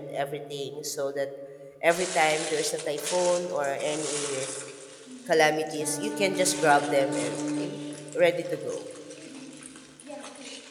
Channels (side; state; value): both; identical; correlation 1.00